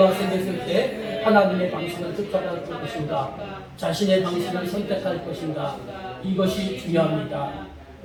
생겼을 때 하나님의 방식을 쫓아갈 것인가? 자신의 방식을 선택할 것인가? 이것이 중요합니다.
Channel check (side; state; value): both; identical; correlation 1.00